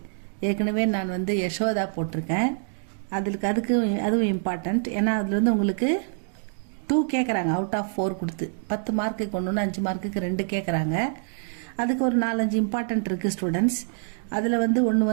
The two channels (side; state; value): left; silent; 61 dB below the other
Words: ஏற்கனவே நான் யசோதா போட்டிருக்கேன். அதுவும் இம்பார்ட்டண்ட். ஏன்னா அதில் உங்களுக்கு 2 கேட்குறாங்க அவுட் ஆஃப் 4 கொடுத்து 10 மார்க்குக்கு 1 5 மார்க்குக்கு 2 கேட்குறாங்க. அதுக்கு ஒரு 4-5 இம்பார்ட்டண்ட் இருக்குது ஸ்டூடெண்ட்ஸ். அதில்